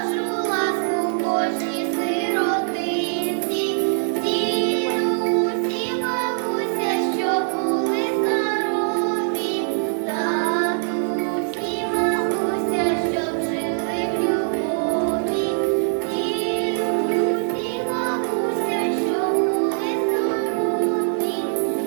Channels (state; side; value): silent; left; 64 dB below the other